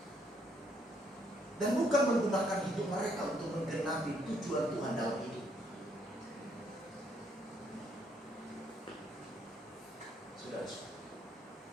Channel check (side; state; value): both; normal; correlation 0.70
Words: dan bukan menggunakan hidup mereka untuk menggenapi tujuan Tuhan dalam hidup. Saudara-saudara,